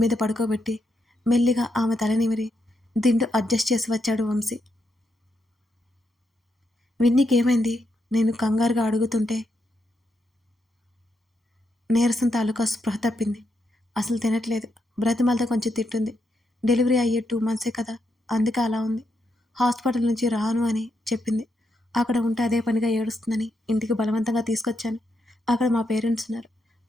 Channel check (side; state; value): both; normal; correlation 0.81